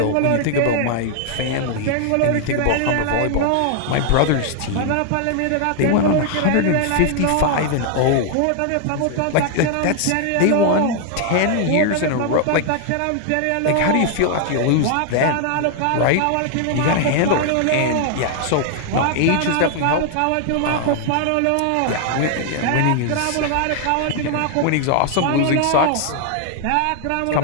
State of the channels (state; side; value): different; both; correlation 0.00